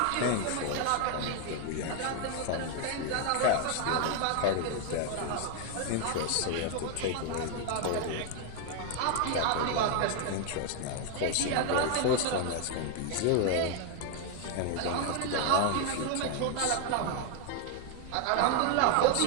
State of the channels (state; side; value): different; both; correlation 0.01